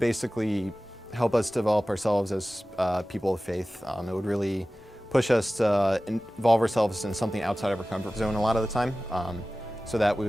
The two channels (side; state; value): both; normal; correlation 0.96